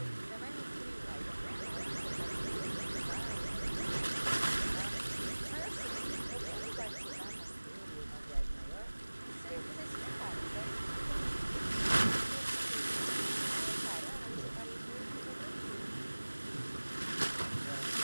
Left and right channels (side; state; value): both; inverted; correlation -1.00